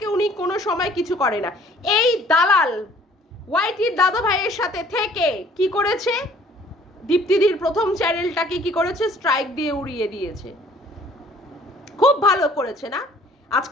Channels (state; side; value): normal; both; correlation 0.55